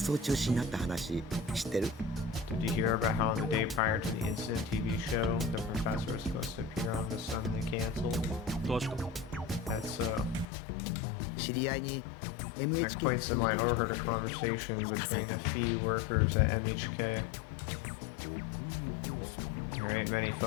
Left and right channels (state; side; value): drops out; right; at 10.5 s